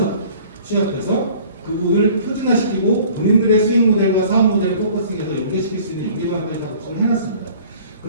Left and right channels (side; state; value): both; inverted; correlation -0.50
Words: 취합해서 그 부분을 표준화시키고 본인들의 수익 모델과 사업 모델을 포커싱해서 연계시킬 수 있는 연계방안까지 좀 해놨습니다.